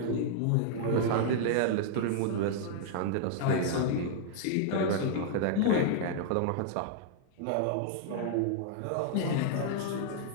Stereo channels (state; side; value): different; both; correlation -0.01